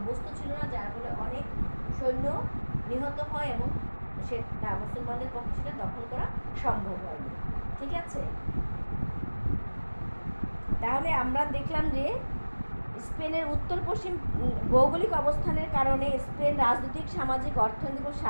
ছিল না, যার ফলে অনেক সৈন্য নিহত হয় এবং সেটা মুসলমানদের পক্ষে সেটা দখল করা সম্ভব হয়নি, ঠিক আছে? তাহলে আমরা দেখলাম যে স্পেনের উত্তর পশ্চিম ভৌগোলিক অবস্থানের কারণে স্পেন রাজনৈতিক, সামাজিক, অর্থনৈতিক ও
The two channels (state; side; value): inverted; both; correlation -1.00